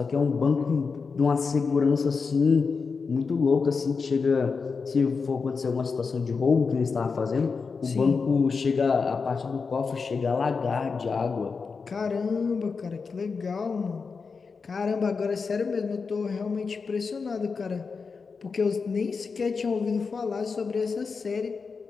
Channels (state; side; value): quieter; right; 5.0 dB